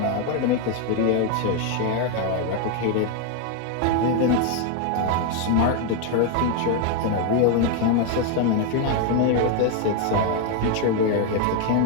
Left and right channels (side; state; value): both; different; correlation 0.01